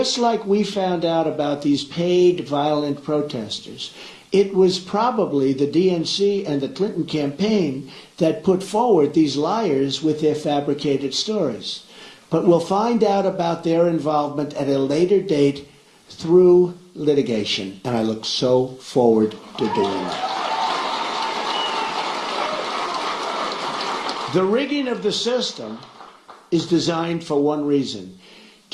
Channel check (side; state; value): both; identical; correlation 1.00